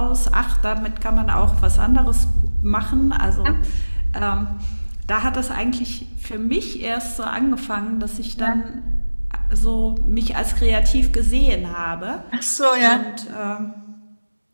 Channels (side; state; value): both; inverted; correlation -1.00